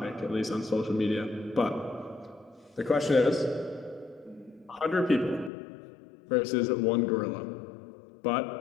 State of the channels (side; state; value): right; drops out; at 5.5 s